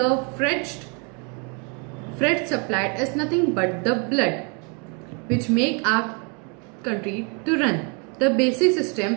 freight supplied is nothing but the blood, which make our country to run. The basic system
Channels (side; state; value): left; quieter; 35.3 dB